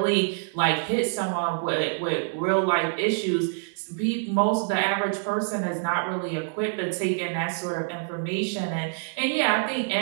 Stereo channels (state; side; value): silent; left; digital silence